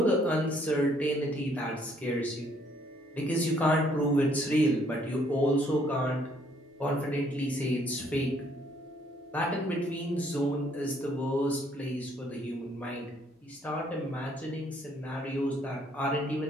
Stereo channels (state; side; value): normal; both; correlation 0.66